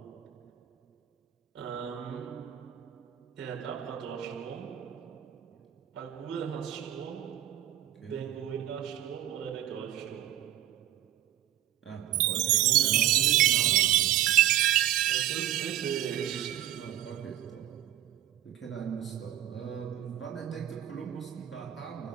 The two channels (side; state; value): left; quieter; 12.5 dB